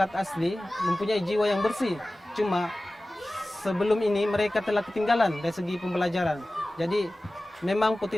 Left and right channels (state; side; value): normal; both; correlation 0.97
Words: asli mempunyai jiwa yang bersih. Cuma sebelum ini mereka telah ketinggalan dari segi pembelajaran. Jadi memang